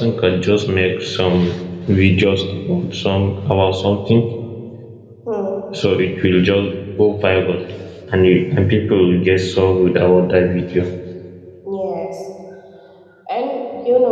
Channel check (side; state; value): both; identical; correlation 1.00